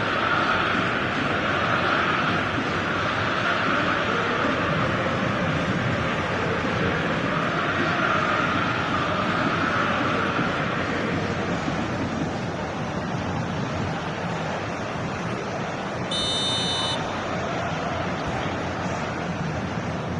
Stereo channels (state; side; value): identical; both; correlation 1.00